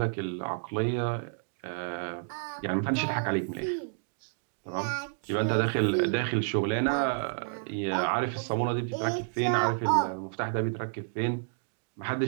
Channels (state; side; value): silent; left; digital silence